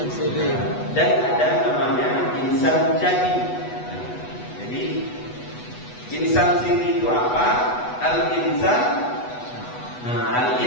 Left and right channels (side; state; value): right; late; 8.1 ms